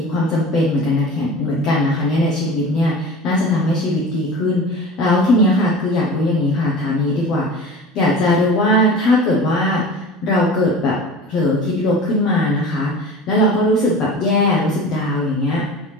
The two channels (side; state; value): both; normal; correlation 0.36